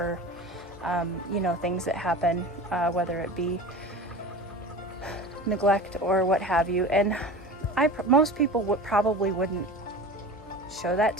you know, things that happen, whether it be neglect or what have you. And most people probably wouldn't show that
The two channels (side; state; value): both; normal; correlation 0.34